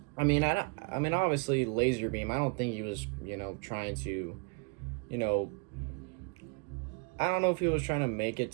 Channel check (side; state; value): left; quieter; 35.5 dB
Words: obviously Lazarbeam, I don't think he was, trying to, I don't know if he was trying to make it